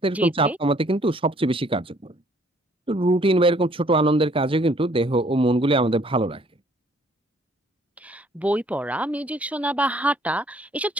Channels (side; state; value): both; normal; correlation 0.61